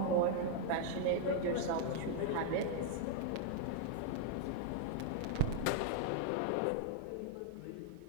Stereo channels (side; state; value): both; different; correlation 0.00